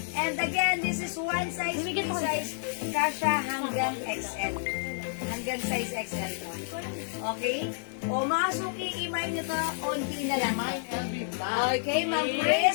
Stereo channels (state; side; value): silent; right; 57 dB below the other